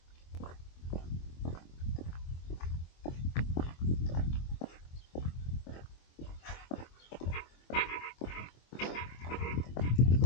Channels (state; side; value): late; right; 24 ms